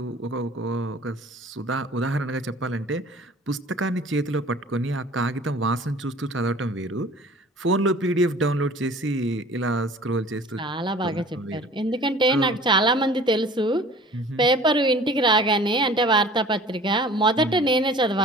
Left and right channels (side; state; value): both; normal; correlation 0.46